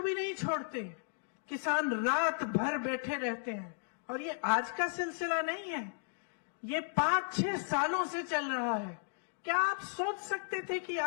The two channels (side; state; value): right; silent; digital silence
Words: भी नहीं छोड़ते, किसान रात भर बैठे रहते हैं। और ये आज का सिलसिला नहीं है, ये 5-6 सालों से चल रहा है। क्या आप सोच सकते थे कि